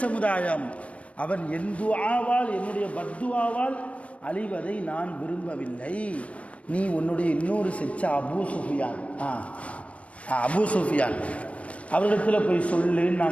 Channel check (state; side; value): late; right; 0.064 ms